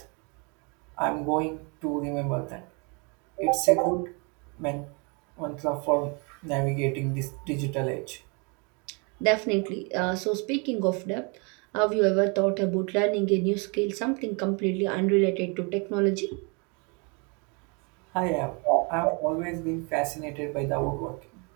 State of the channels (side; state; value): left; quieter; 32.9 dB